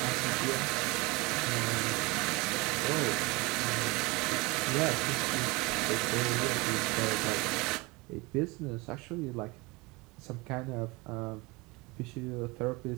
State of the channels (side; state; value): left; quieter; 24.9 dB